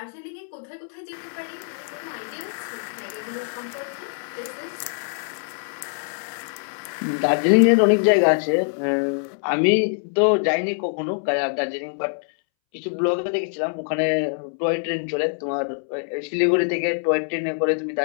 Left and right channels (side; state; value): right; silent; 63 dB below the other